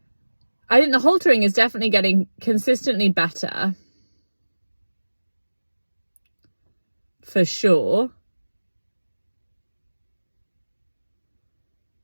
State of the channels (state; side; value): inverted; both; correlation -1.00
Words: I think the haltering is definitely getting consistently better. For sure.